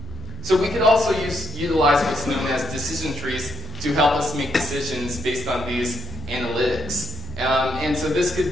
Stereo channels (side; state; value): both; normal; correlation 0.79